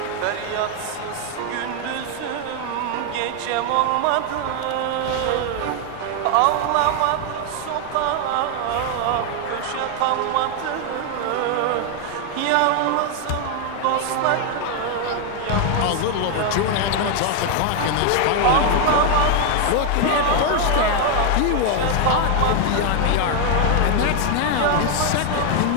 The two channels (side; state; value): both; different; correlation 0.01